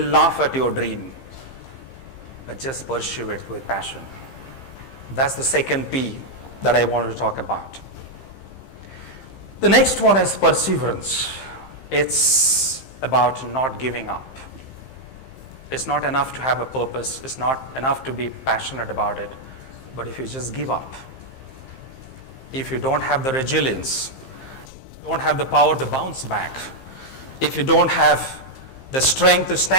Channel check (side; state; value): right; late; 15 ms